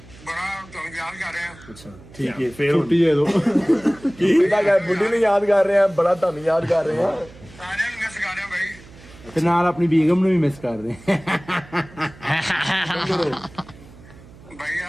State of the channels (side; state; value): right; noise; hum, 21 dB below the sound